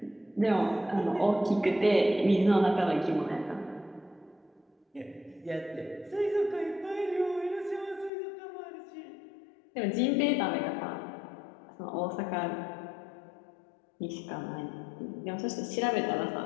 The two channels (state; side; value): drops out; right; at 8.1 s